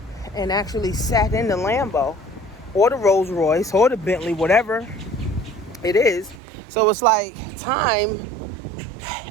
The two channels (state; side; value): drops out; left; at 6.4 s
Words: and actually sat in the Lambo or the Rolls Royce or the Bentley, whatever it is? So it's like time